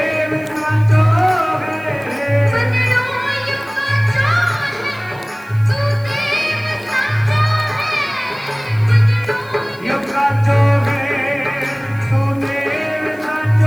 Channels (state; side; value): noise; left; hiss, 27 dB below the sound